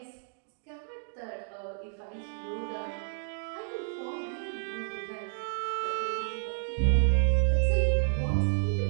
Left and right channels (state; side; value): silent; left; digital silence